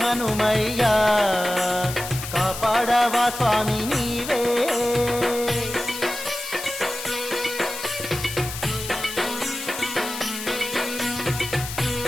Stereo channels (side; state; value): left; noise; hiss, 8 dB below the sound